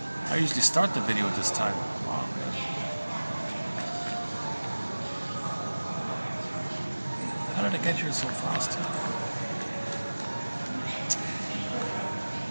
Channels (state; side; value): inverted; both; correlation -1.00